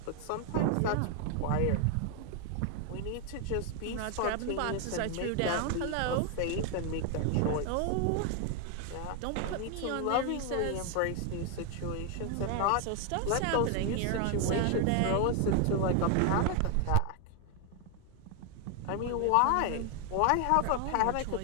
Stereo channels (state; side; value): different; both; correlation 0.00